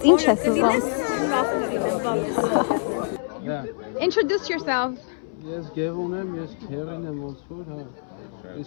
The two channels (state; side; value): silent; right; 62 dB below the other